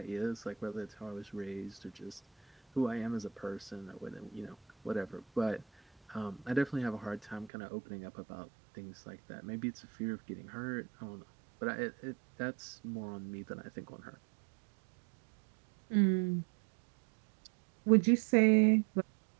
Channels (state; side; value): drops out; left; at 7.5 s